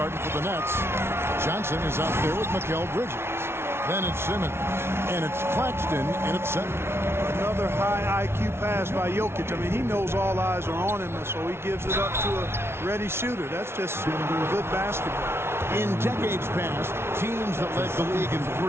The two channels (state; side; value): late; left; 0.12 ms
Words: for the Nets. Johnson is out there with Mikal Bridges. Then it's Simmons. And it's Claxton in at center. Another high IQ pass by Jokic. I mean, he knows all eyes are on him, so he gives it up to a ready shooter. That's just good basketball. In decades past, teams that led the league in